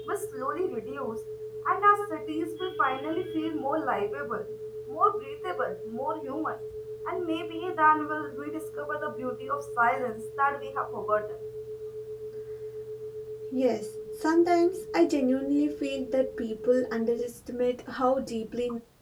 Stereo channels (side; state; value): both; identical; correlation 1.00